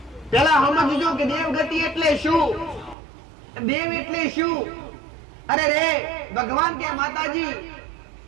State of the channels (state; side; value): drops out; left; at 3.0 s